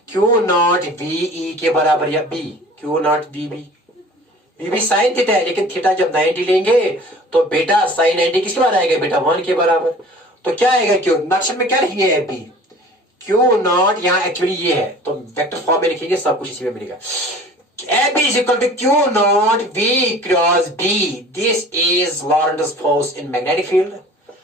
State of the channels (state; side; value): normal; both; correlation 0.45